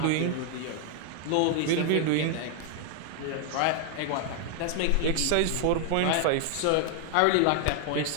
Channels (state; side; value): different; both; correlation 0.00